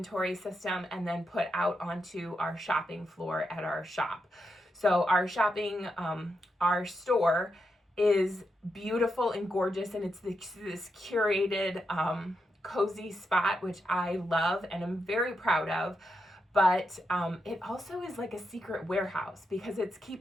system, and then put out onto our shopping floor at our shop. So our our store is beautiful and gorgeous, and it's this curated, cozy spot, which I love and I'm very proud of. But it also is like a secret warehouse because it's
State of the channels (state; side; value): normal; both; correlation 0.84